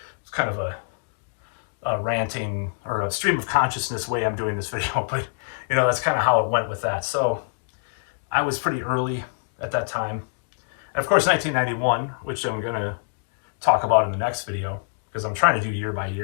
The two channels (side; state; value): right; silent; digital silence